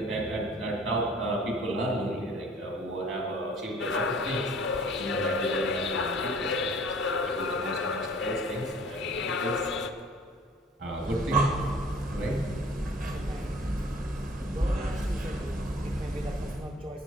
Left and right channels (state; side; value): normal; both; correlation 0.51